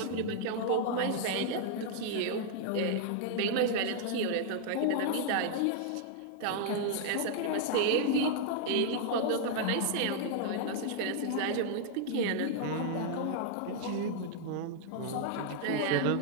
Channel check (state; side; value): different; both; correlation 0.00